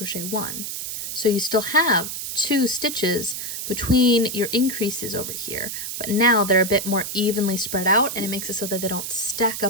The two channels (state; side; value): noise; right; hiss, 5 dB below the sound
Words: 1. So you still have 2 stitches between your increases over here, but now they're a bit more evenly spread out, and it makes it so that they don't stack